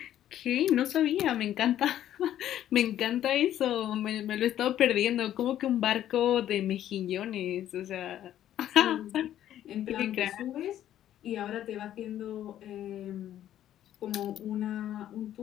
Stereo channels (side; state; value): right; quieter; 11.7 dB